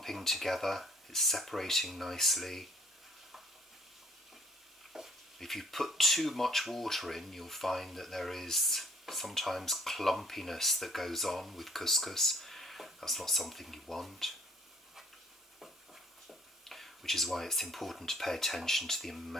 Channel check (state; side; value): normal; both; correlation 0.59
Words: together, it's separating nicely. If you put too much water in, you'll find that there is sometimes clumpiness that goes on with couscous. That's not something you want. Which is why it's important to pay attention to the